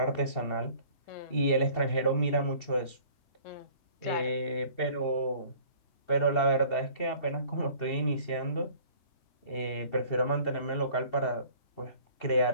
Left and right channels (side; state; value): right; late; 2.7 ms